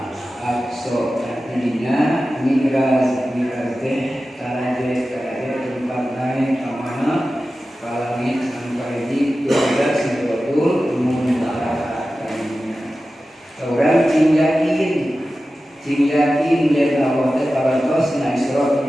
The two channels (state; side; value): normal; both; correlation 0.94